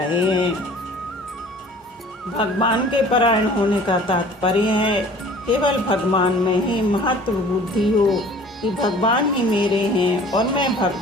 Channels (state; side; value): normal; both; correlation 0.48